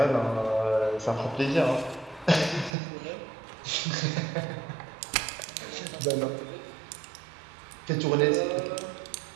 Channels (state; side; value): drops out; left; at 2.8 s